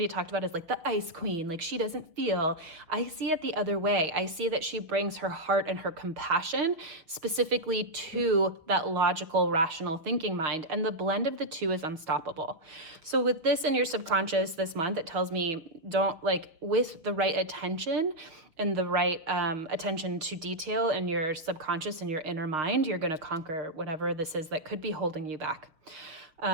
talked about as like the ice queen, like she doesn't feel. I see it the other way. I see that she brings her heart and her compassion specifically to that logical, rational thinking mind. And the blend of the two is unstoppable. So with this in your subconscious this month, it tells me don't like with the right attention and the right attention to detail in your subconscious and your inner mind, you're going to conquer whatever this is that could be holding you back.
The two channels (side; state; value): left; late; 6.4 ms